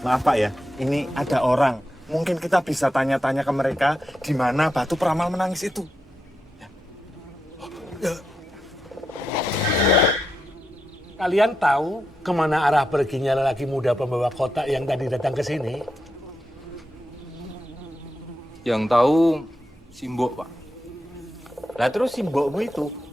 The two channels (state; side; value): normal; both; correlation 0.86